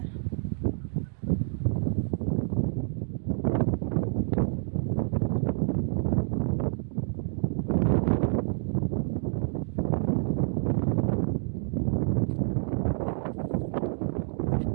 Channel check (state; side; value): silent; left; digital silence